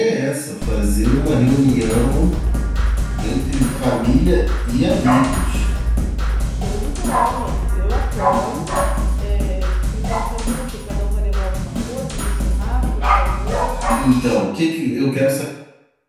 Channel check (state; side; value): identical; both; correlation 1.00